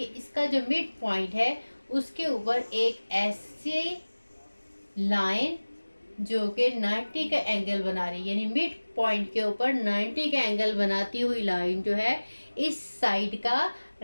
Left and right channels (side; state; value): both; inverted; correlation -1.00